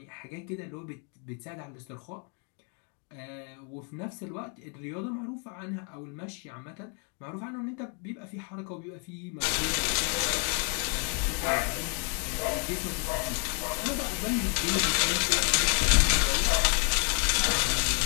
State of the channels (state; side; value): quieter; right; 39.7 dB